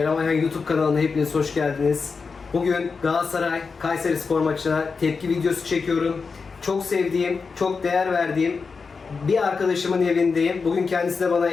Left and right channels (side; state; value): right; quieter; 4.9 dB